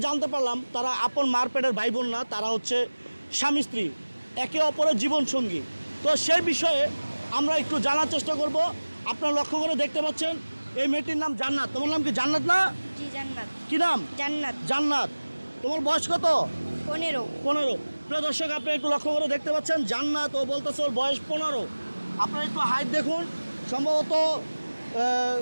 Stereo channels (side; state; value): both; inverted; correlation -1.00